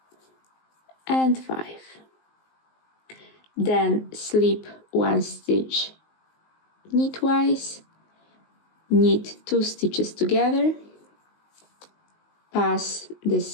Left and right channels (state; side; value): late; right; 19 ms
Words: and 5. Then slip 1 stitch knitwise, knit 2 stitches together, pass the